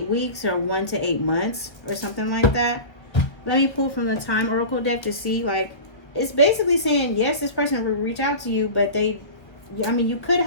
weeks or 1 to 8 months or something like that. Let me pull from the Time Oracle deck to see, like, it's basically saying, yes, this person will reach out to you, but I mean, you could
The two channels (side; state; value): right; late; 1.1 ms